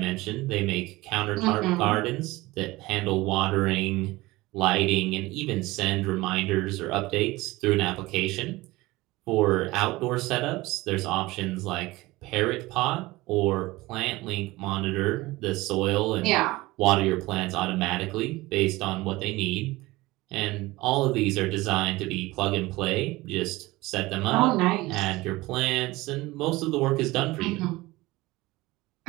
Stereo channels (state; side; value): quieter; left; 20.0 dB